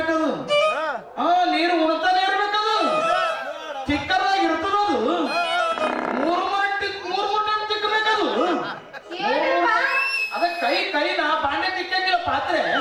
ನೀರು ಉಣ್ತಾನೆ ಇರ್ಬೇಕದು, ಚಿಕ್ಕದಾಗಿ ಇರ್ತದದು. 3 ಟೈಮ್ ತಿಕ್ಕಬೇಕದು. ಅದ ಕೈ ಕೈನ ಬಾಂಡೆ ತಿಕ್ಕಂಗಿಲ್ಲ, ಪಾತ್ರೆ.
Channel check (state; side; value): identical; both; correlation 1.00